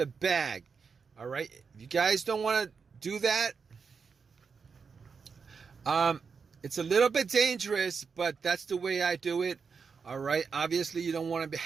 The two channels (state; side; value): quieter; left; 5.6 dB